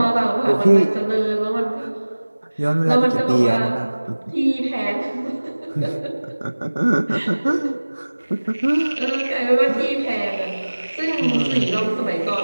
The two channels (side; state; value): both; inverted; correlation -1.00